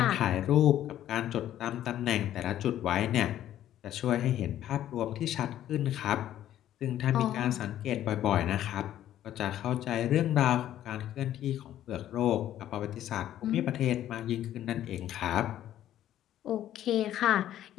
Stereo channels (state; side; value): quieter; right; 12.0 dB